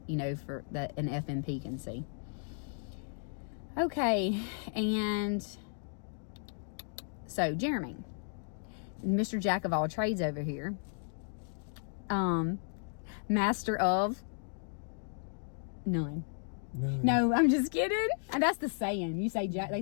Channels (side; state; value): right; silent; digital silence